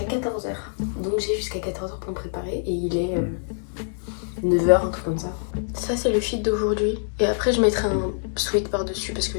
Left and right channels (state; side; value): silent; right; digital silence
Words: 14h. Donc j'ai jusqu'à 14h pour me préparer et il est 9h, un truc comme ça. Ça c'est le fit d'aujourd'hui. Et après je mettrai un sweat par dessus parce